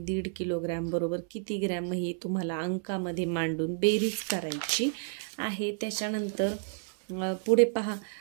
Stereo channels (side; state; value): left; silent; 57 dB below the other